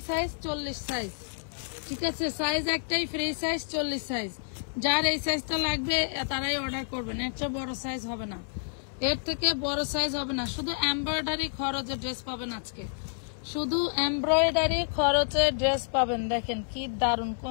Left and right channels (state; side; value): silent; right; 58 dB below the other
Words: 40 সাইজ, ঠিক আছে। সাইজ একটাই, ফ্রি সাইজ 40 সাইজ। যার এই সাইজটা লাগবে তারাই অর্ডার করবেন, এর চেয়ে বড় সাইজ হবে না, এর থেকে বড় সাইজ হবে না। শুধু এমব্রয়ডারি খরচে ড্রেস পাবেন, আজকে শুধু এমব্রয়ডারি খরচে ড্রেস পাবেন। দেখেন কি দারুণ